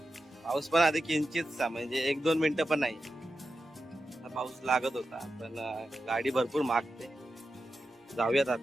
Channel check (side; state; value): both; normal; correlation 0.90